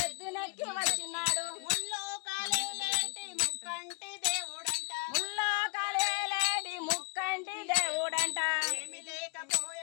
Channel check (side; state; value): right; quieter; 32.8 dB